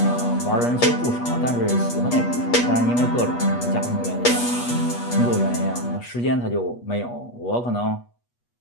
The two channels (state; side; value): late; right; 8.3 ms